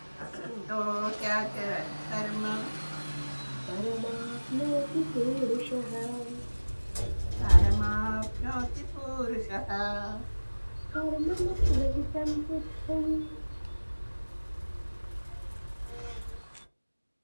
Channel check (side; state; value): both; inverted; correlation -1.00